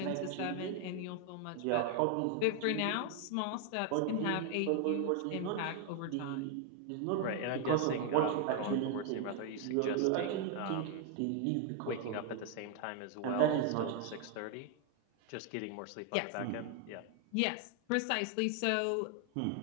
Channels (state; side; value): different; both; correlation 0.00